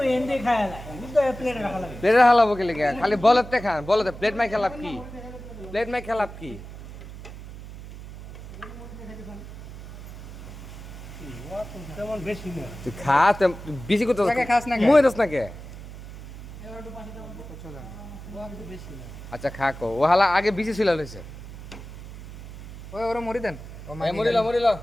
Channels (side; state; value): right; noise; hum, 13 dB below the sound